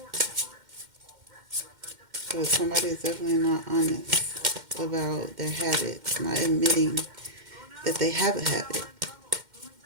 So somebody is definitely not honest about their habits, not admitting that they have a habit.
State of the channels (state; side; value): late; left; 2.1 ms